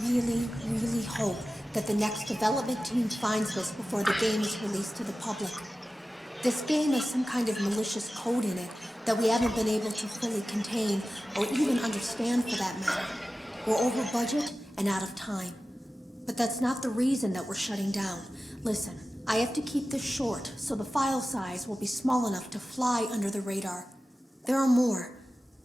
really, really hope that the next development team finds this before the game is released to the public. This game has some kind of malicious code in it that we haven't been able to fully contain or even understand for that matter. We're over budget and out of time. But that's not the reason that we're shutting down. Listen, I have to keep this short so the file size will be small enough to fly under the radar. There are more.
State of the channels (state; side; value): normal; both; correlation 0.95